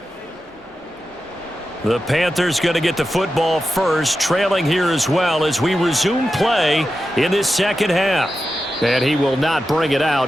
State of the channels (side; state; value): both; normal; correlation 0.91